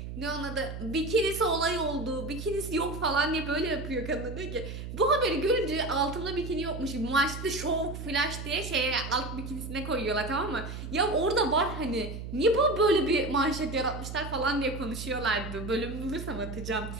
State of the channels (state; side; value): noise; right; hum, 8 dB below the sound